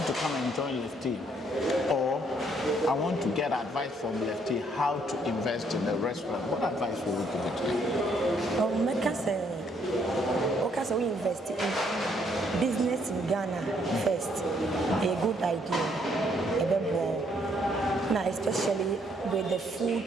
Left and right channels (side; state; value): both; normal; correlation 0.68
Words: to come and join Lefty. Or I want to get advice from Lefty how to invest in the restaurant. What advice would you give to them? We invest in business in Ghana first. A good idea. A bit more. Now, especially with the food